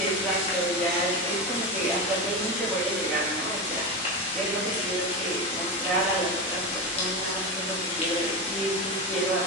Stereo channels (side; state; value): both; normal; correlation 0.18